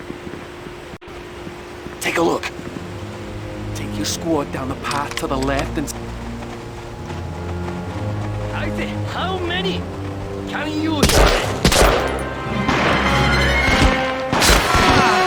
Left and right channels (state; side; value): identical; both; correlation 1.00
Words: Take a look. Take your squad down the path to the left and... How many can you use?